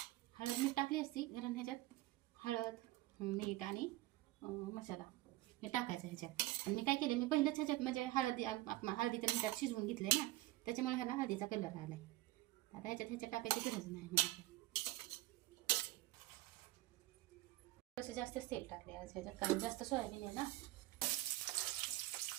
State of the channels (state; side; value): quieter; left; 17.4 dB